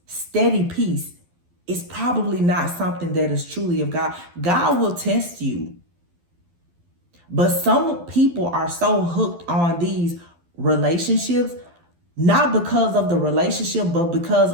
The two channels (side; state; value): left; late; 12 ms